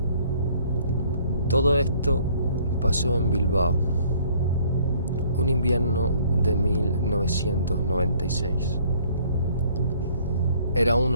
Todo esto pasó en Bilbao, un invierno de 1996. Era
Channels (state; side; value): inverted; both; correlation -0.60